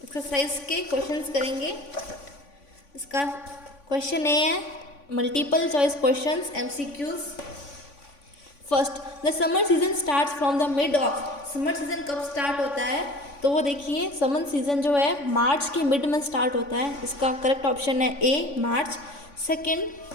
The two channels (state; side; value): late; right; 3.5 ms